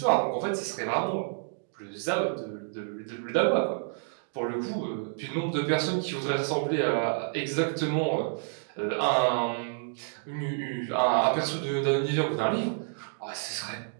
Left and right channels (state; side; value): silent; left; digital silence